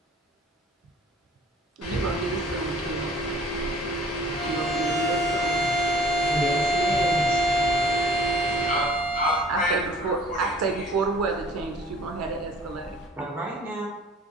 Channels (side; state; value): both; normal; correlation 0.51